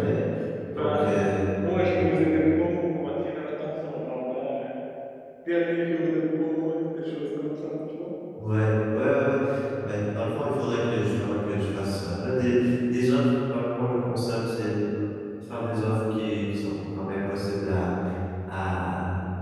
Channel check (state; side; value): identical; both; correlation 1.00